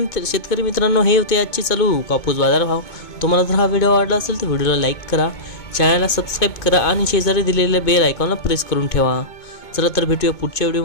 शेतकरी मित्रांनो, हे होते आजचे चालू कापूस बाजार भाव। तुम्हाला जर हा व्हिडिओ आवडला असेल तर व्हिडिओला लाईक करा, चॅनलला सबस्क्राईब करा आणि शेजारी दिलेल्या बेल आयकॉनला प्रेस करून ठेवा। चला तर भेटूया पुढच्या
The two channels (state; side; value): late; right; 2.2 ms